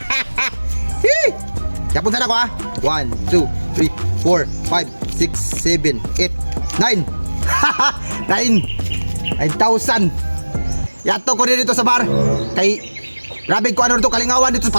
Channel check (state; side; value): inverted; both; correlation -1.00